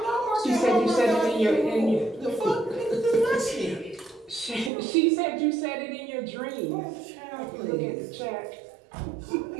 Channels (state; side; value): drops out; left; at 4.7 s